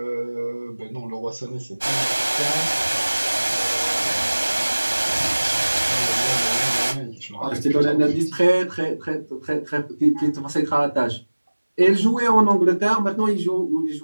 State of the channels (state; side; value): inverted; both; correlation -1.00